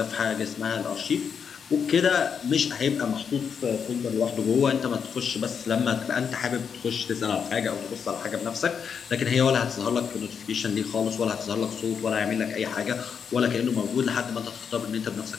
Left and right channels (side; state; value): right; quieter; 6.8 dB